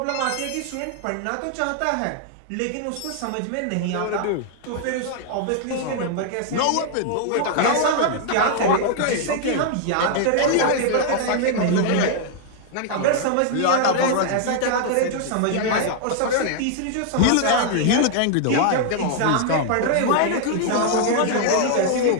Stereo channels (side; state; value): both; different; correlation 0.00